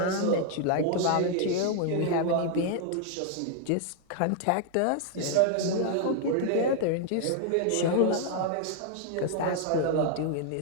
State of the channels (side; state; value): both; different; correlation 0.00